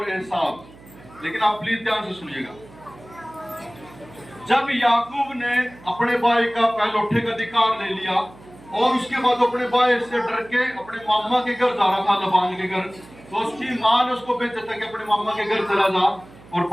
एसाव। लेकिन आप प्लीज ध्यान से सुनिएगा। जब याकूब ने अपने भाई का पहलौठे का अधिकार ले लिया, और उसके बाद अपने भाई से डर के अपने मामा के घर जा रहा था, लबान के घर, तो उसकी माँ ने उसको भेजा था कि अपने मामा के घर चला जा। और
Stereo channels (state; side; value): noise; right; hum, 22 dB below the sound